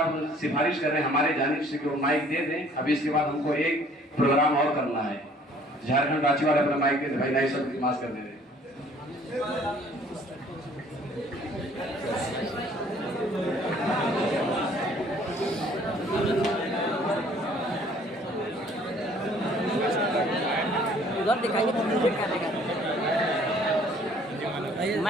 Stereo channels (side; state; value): both; normal; correlation 0.57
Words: सिफारिश कर रहे हैं हमारे जानिब से कि वो माइक दे दें। अभी इसके बाद हमको एक प्रोग्राम और करना है। झारखंड रांची वाले अपना माइक दे दे। भाई नाजिम साहब इल्तिमास कर दे रहे। उधर दिखाइए